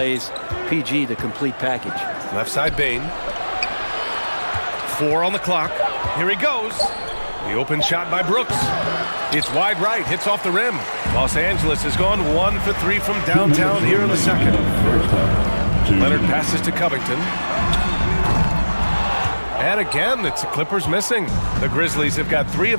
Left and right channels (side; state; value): both; inverted; correlation -1.00